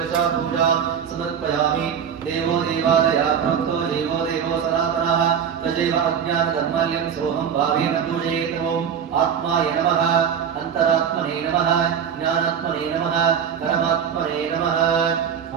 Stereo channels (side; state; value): left; quieter; 7.8 dB